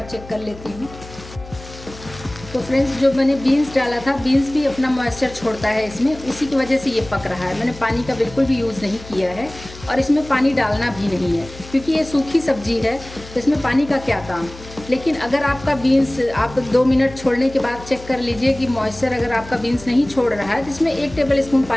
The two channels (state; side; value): noise; left; hum, 17 dB below the sound